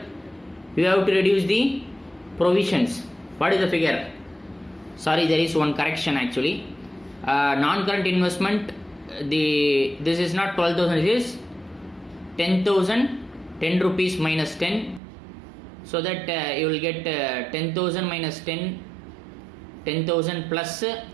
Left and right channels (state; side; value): drops out; left; at 15.0 s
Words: you have to reduce the provisions. What is the figure? Sorry, there is one correction actually. Non-current investment. This is not 12,000. It is 10,000. 10 rupees minus 10. So that you will get 10,000 minus 10. 10,000 plus